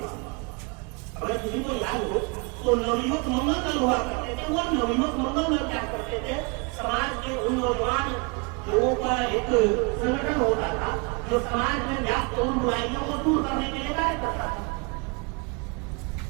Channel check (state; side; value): quieter; left; 31.6 dB